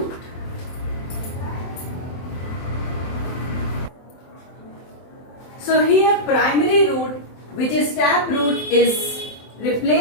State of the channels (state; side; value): late; right; 23 ms